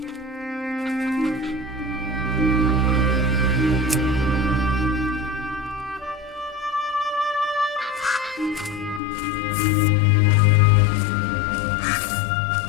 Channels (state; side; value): drops out; right; at 9.0 s